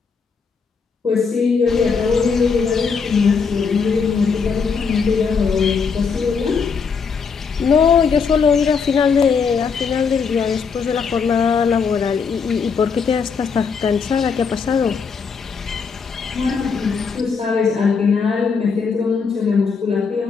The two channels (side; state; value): right; quieter; 5.6 dB